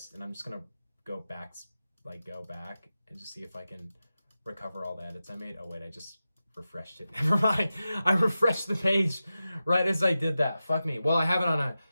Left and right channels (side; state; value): both; inverted; correlation -0.93